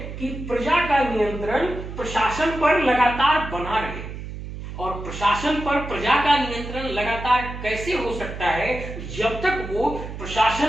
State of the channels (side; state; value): right; noise; hum, 9 dB below the sound